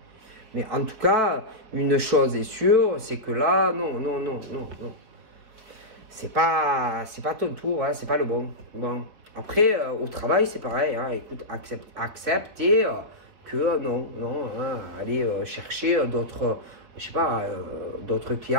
Mais en tout cas, une chose est sûre, c'est que là, non. C'est pas ton tour, hein, c'est pas le bon. Bon. Après, au travail, c'est pareil. Hein, écoute, accepter que non, hein, aller chercher d'autres, je sais pas, d'autres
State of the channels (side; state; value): left; late; 4.5 ms